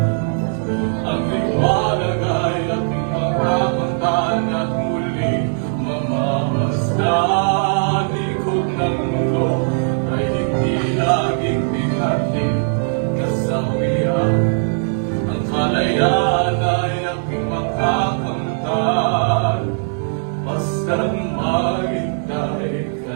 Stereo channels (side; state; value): left; silent; 61 dB below the other